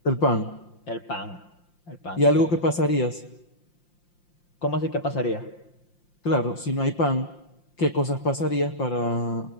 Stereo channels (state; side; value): late; right; 5.7 ms